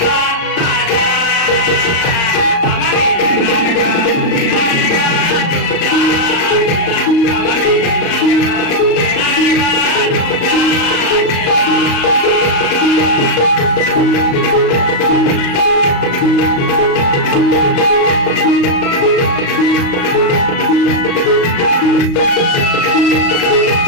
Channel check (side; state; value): right; late; 35 ms